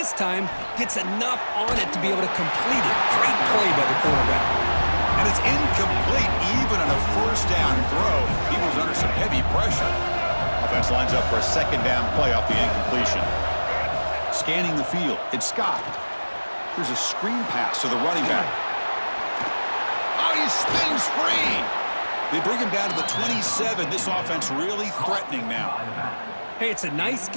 time gets enough on it to be able to complete it. Great play by the quarterback. And it's incomplete even on a 1st down throw. He was under some heavy pressure. Offense lines up for a 2nd down play off the incompletion. Scanning the field, it's Scott. Here's a screen pass to the running back. Oh, he spins free. They bring him down to the 27. This offense really threatening now. Hey, it's a nice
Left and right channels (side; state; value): both; inverted; correlation -1.00